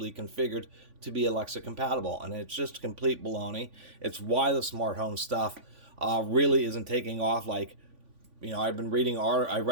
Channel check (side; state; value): left; late; 3.5 ms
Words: configured to be Alexa compatible. And it's just complete baloney. It's why the smart home stuff really isn't taking off. Like, I've been I